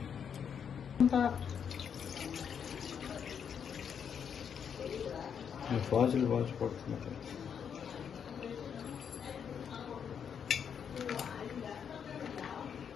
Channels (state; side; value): quieter; right; 7.5 dB